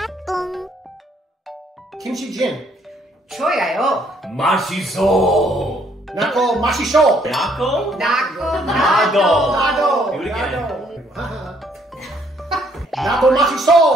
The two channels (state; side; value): normal; both; correlation 0.67